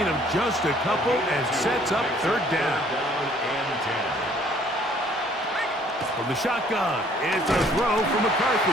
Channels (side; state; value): both; normal; correlation 0.59